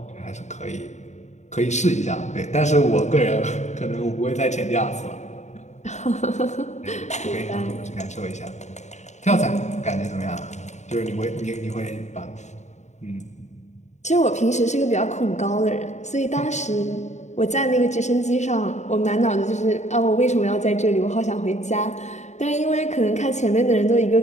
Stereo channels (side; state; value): right; late; 0.34 ms